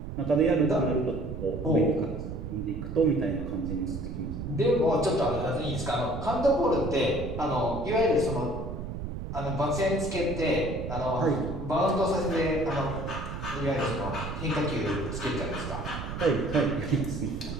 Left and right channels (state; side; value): noise; right; rumble, 7 dB below the sound